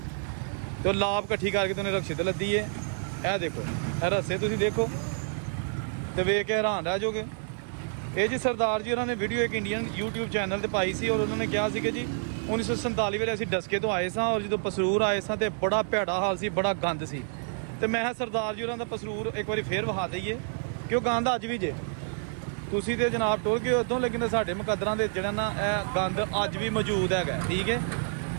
ਤੇ ਲਾਭ ਇਕੱਠੀ ਕਰਕੇ ਤੇ ਉਹਨੇ ਰਕਸ਼ੇ ਤੇ ਲੱਦੀ ਹੈ। ਇਹ ਦੇਖੋ, ਇਹ ਰਸਤੇ ਤੁਸੀਂ ਦੇਖੋ ਤੇ ਵੇਖ ਕੇ ਹੈਰਾਨ ਰਹਿ ਜਾਓਗੇ। ਇਹ ਜੀ ਸਰਦਾਰ ਜੀ ਉਹਨਾਂ ਨੇ ਵੀਡੀਓ ਇੱਕ ਇੰਡੀਅਨ YouTube ਚੈਨਲ ਤੇ ਪਾਈ ਸੀ ਔਰ ਉਹਨਾਂ ਨੇ ਕਿਹਾ ਸੀ ਕਿ ਜੀ 1947 ਵੇਲੇ ਅਸੀਂ ਡਸਕੇ ਤੋਂ ਆਏ ਸਾਂ ਔਰ ਜਦੋਂ ਪਸਰੂਰ ਆਏ ਸਾਂ ਤੇ ਬੜਾ ਭੈੜਾ ਹਾਲ ਸੀ, ਬੜਾ ਗੰਦ ਸੀ। ਤੇ ਮੈਂ ਕਿਹਾ ਸਰਦਾਰ ਜੀ ਉਹਨਾਂ ਦਾ ਪਸਰੂਰ ਇੱਕ ਵਾਰੀ ਫੇਰ ਵਿਖਾ ਦਈਏ ਕਿ ਉਹ ਗੰਦ ਅੱਜ ਵੀ ਜੇ। ਤੁਸੀਂ ਤੇ ਜਨਾਬ ਟੁਰ ਗਏ ਉਦੋਂ, ਲੇਕਿਨ ਸਾਡੇ ਮੁਕੱਦਰਾਂ ਦੇ ਜਿਹੜਾ ਨਾ ਇਹ ਗੰਦ ਅੱਜ ਵੀ ਮੌਜੂਦ ਹੈਗਾ। ਠੀਕ ਹੈ,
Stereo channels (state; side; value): silent; left; 59 dB below the other